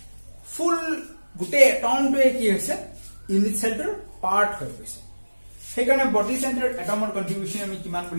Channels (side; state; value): both; inverted; correlation -1.00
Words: ফুল গুটে atom টোৱে কি হৈছে ইউনিট সেল টোৰ পাৰ্ট হৈ গৈছে সেইকাৰণে body centered atomৰ কন্ট্ৰিবিউশন আমি কিমান